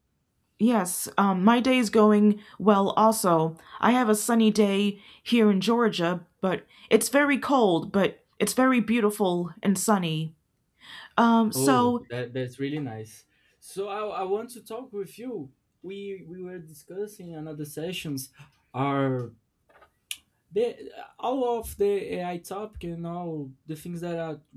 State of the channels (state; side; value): identical; both; correlation 1.00